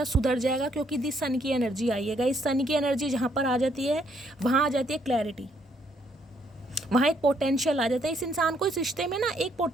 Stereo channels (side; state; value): both; normal; correlation 0.70